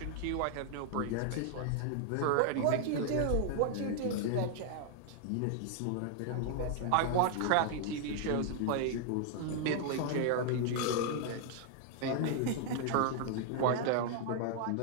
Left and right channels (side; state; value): both; different; correlation 0.00